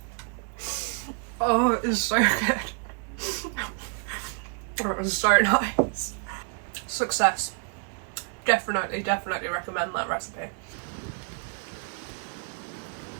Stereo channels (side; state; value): left; quieter; 38.5 dB